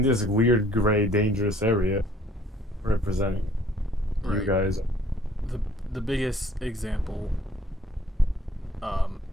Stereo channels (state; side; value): normal; both; correlation 0.58